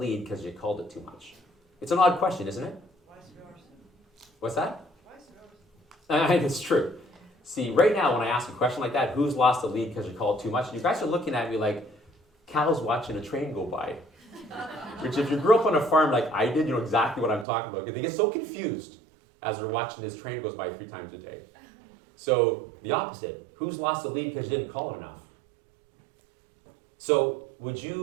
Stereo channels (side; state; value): left; drops out; at 17.4 s